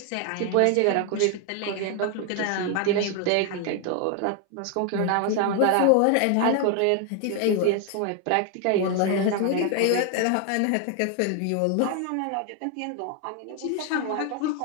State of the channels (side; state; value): both; different; correlation 0.00